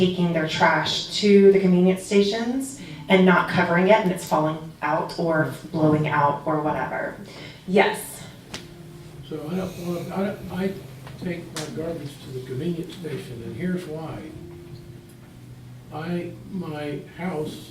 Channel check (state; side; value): identical; both; correlation 1.00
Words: their trash to the convenience stations and not covering it, and it's falling out or blowing out or whatever. Yes. So I take my garbage to the convenience station, and here's why. My house